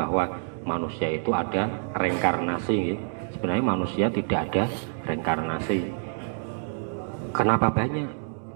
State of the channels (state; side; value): silent; left; digital silence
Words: manusia itu ada reinkarnasi nggih. Sebenarnya manusia tidak ada reinkarnasi. Kenapa banyak?